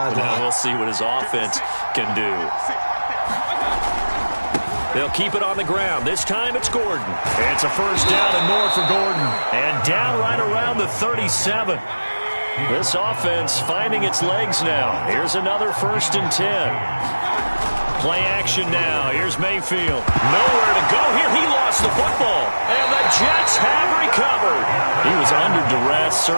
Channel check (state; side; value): inverted; both; correlation -1.00